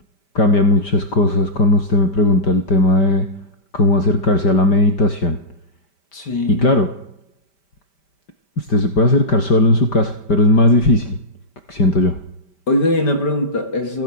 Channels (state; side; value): late; right; 5.1 ms